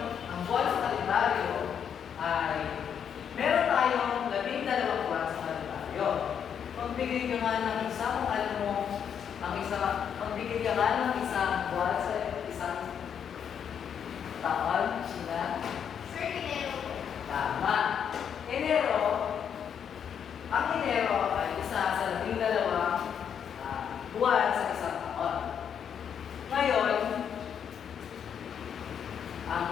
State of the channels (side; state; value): right; quieter; 8.0 dB